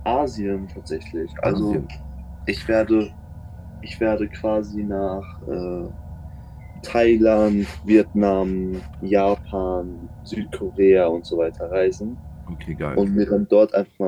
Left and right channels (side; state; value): both; identical; correlation 1.00